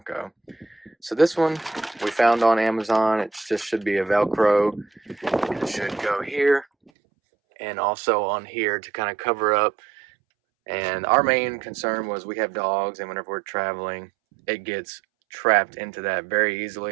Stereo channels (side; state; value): left; drops out; at 6.9 s